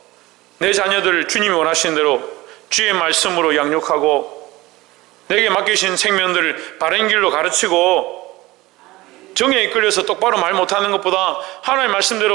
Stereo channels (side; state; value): left; quieter; 19.5 dB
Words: 내 자녀들을 주님이 원하시는 대로 주의 말씀으로 양육하고 내게 맡기신 생명들을 바른 길로 가르치고 정에 이끌려서 똑바로 말 못하는 것보다 하나님의